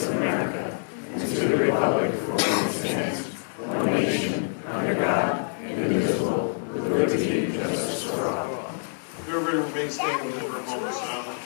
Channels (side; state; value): right; silent; digital silence